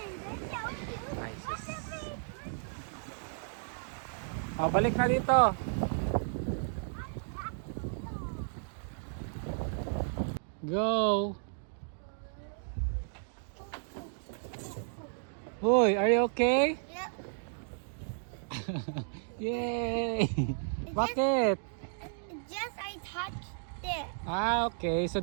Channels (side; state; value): left; silent; digital silence